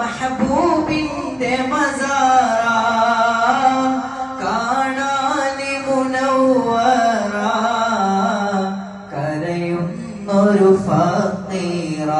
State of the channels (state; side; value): identical; both; correlation 1.00